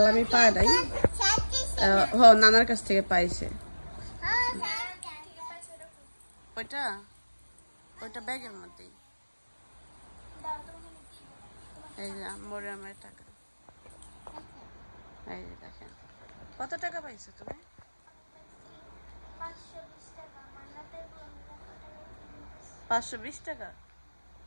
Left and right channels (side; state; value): both; inverted; correlation -1.00